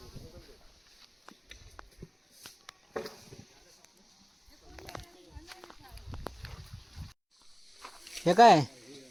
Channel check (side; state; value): both; identical; correlation 1.00